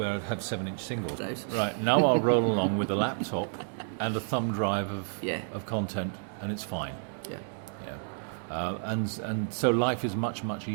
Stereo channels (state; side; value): silent; left; digital silence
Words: I'd have 7-inch singles. Right, now I'll roll along with a laptop and a thumb drive of content, and it's fine. and so life is much, much